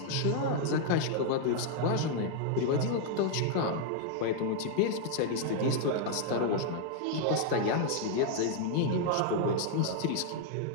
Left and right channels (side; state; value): both; different; correlation 0.00